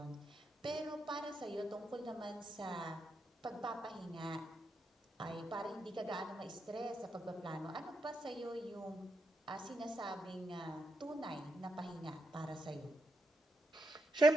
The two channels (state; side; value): normal; both; correlation 0.83